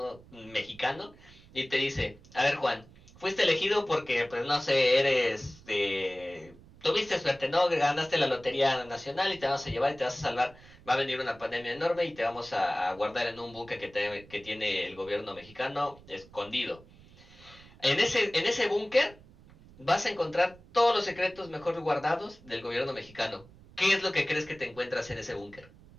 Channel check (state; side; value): noise; right; rumble, 23 dB below the sound